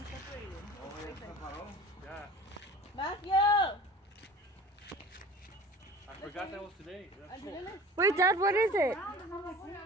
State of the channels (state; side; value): normal; both; correlation 0.41